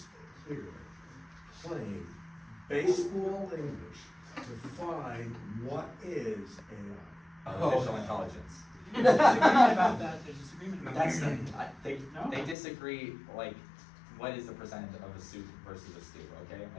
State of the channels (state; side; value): drops out; right; at 12.6 s